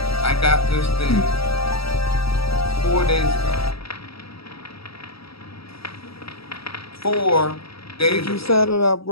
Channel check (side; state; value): right; late; 0.76 ms